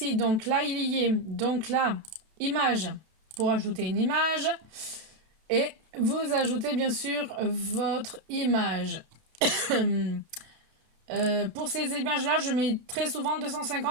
Donc là, il y est. Donc là, image pour ajouter une image. Et vous ajoutez bien sûr votre image. Pour ces images-là, je mets très souvent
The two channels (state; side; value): late; left; 32 ms